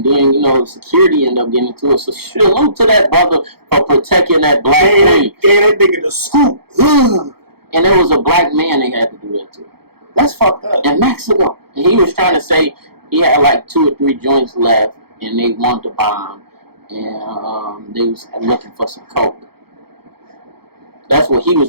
then, security ended up getting into it. So salute to that brother for protecting that black queen. Gave that nigga the scoop. Ugh. And it was a black man they had to do that to. That's fucked up. In Mexico. And he was trying to say he had like 2 or 3 joints left and they wanted to bomb. And they was looking for some coke. That's what he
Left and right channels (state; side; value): late; left; 0.96 ms